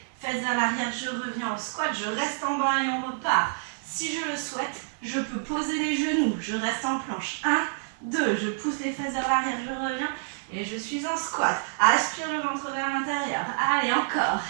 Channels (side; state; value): left; silent; digital silence